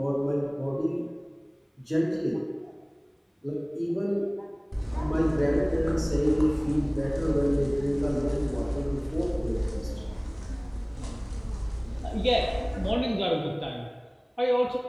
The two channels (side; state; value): both; identical; correlation 1.00